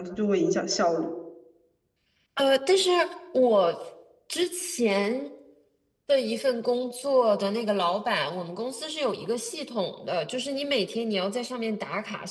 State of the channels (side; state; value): both; identical; correlation 1.00